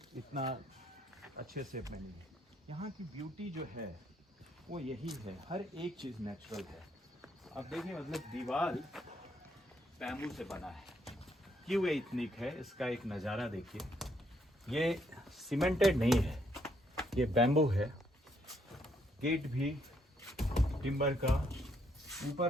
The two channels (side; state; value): both; normal; correlation 0.72